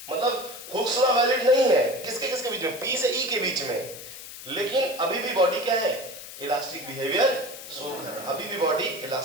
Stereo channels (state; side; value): noise; left; hiss, 13 dB below the sound